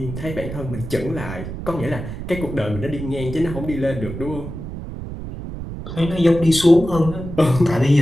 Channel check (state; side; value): noise; right; rumble, 9 dB below the sound